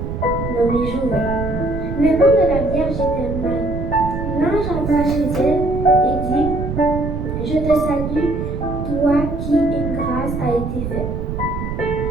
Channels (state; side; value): noise; right; rumble, 4 dB below the sound